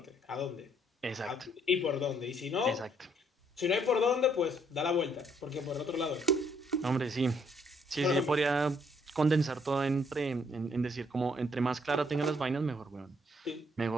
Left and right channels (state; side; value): normal; both; correlation 0.68